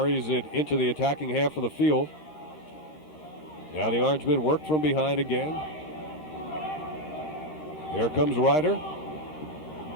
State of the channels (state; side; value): late; right; 13 ms